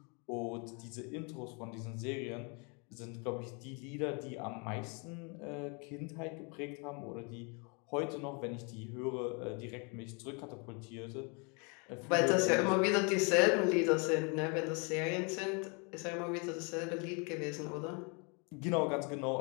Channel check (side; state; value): right; quieter; 34.0 dB